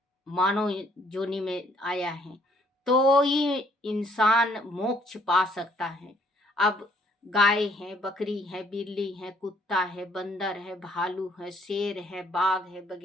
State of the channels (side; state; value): both; normal; correlation 0.65